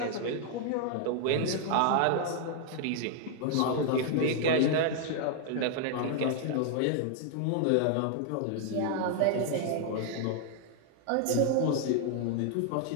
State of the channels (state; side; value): different; both; correlation 0.00